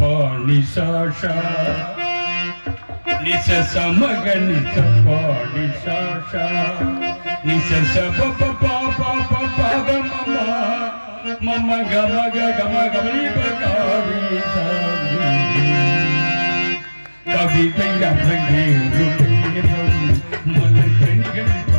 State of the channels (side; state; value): both; inverted; correlation -1.00